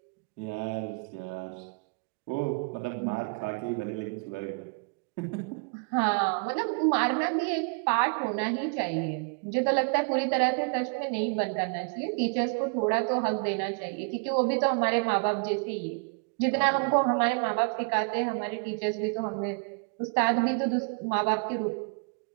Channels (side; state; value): left; quieter; 36.4 dB